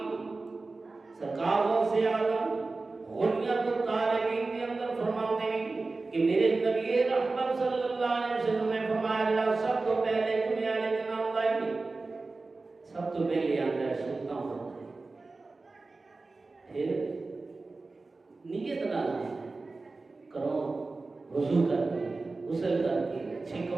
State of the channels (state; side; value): quieter; left; 3.6 dB